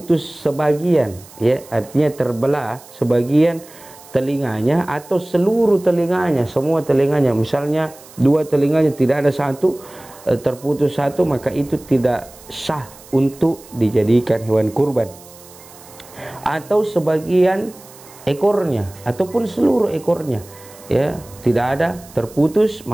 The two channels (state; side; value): noise; right; hiss, 22 dB below the sound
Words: sebagian, ya, artinya terbelah sebagian telinganya atau seluruh telinganya, semua telinganya. Misalnya 2 telinganya tidak ada satu, terputus satu, maka itu tidak sah untuk dijadikan hewan kurban. Atau sebagian ekornya ataupun seluruh ekornya, ya, tidak ada, terputus,